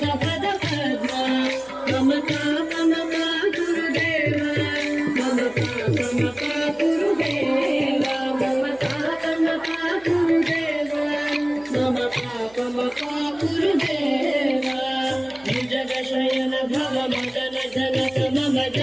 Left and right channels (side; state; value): right; noise; hum, 27 dB below the sound